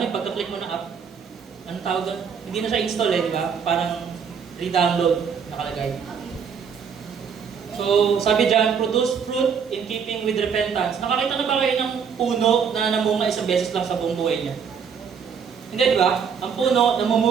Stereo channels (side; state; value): left; quieter; 6.8 dB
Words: pagka-click mo na app, anong tawag doon? Hindi na siya install eh, di ba? Parang re-download nakalagay. So, sabi dyan, produce fruit in keeping with repentance. Nakakita na ba kayo ng puno na namunga isang beses lang sa buong buhay niya? Hindi, di ba? Ang puno,